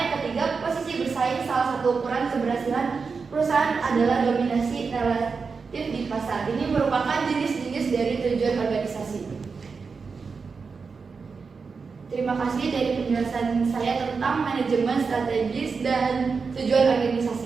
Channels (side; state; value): left; quieter; 5.0 dB